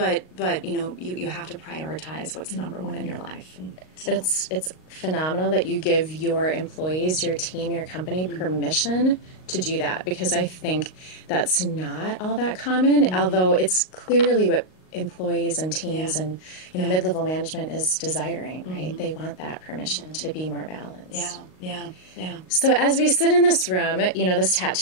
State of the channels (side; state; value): right; late; 38 ms